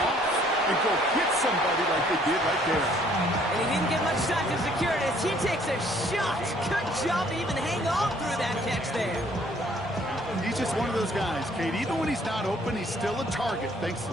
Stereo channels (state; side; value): normal; both; correlation 0.61